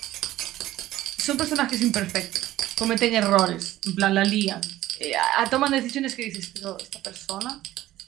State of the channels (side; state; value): left; quieter; 14.9 dB